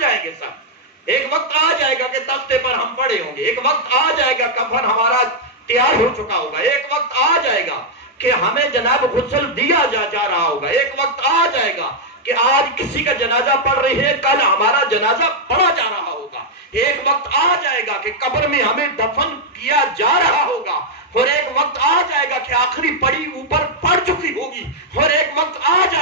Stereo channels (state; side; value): normal; both; correlation -0.03